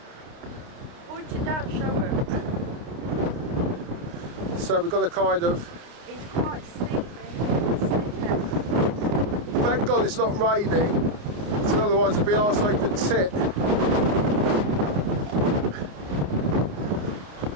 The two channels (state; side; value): late; left; 29 ms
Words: Point it down, show her. So we've got to kind of... It's quite steep here. Thank God it's not raining, because otherwise it'd be arsehole to tit.